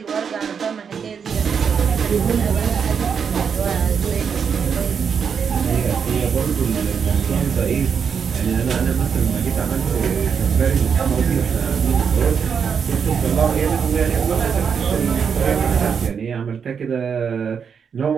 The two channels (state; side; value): quieter; left; 6.7 dB